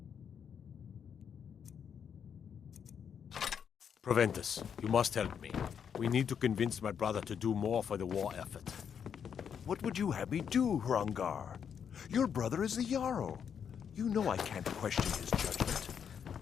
Proventus, you must help me. We need to convince my brother to do more for the war effort. What would you have me do, Hrongar? Your brother is the Jarl. You know I can't question his judgment.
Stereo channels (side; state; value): right; quieter; 7.6 dB